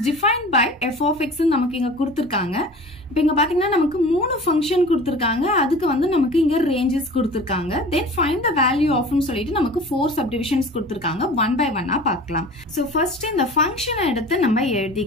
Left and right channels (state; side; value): normal; both; correlation 0.40